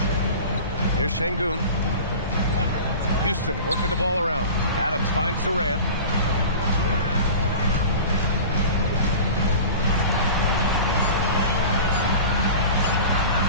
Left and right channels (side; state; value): both; inverted; correlation -0.36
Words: Here's Şengün. Houston working the ball around. Adams finds Durant.